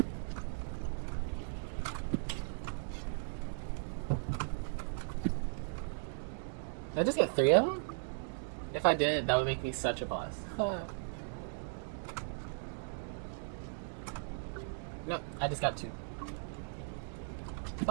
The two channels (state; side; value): silent; left; digital silence